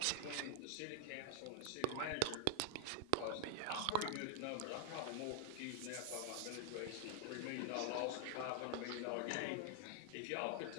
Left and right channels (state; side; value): different; both; correlation 0.00